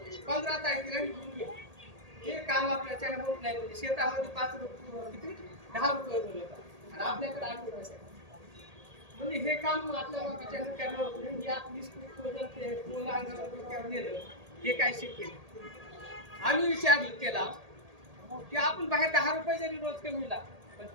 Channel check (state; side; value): late; left; 1.8 ms